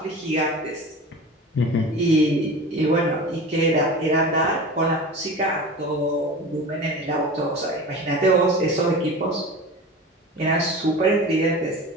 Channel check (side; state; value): both; normal; correlation 0.34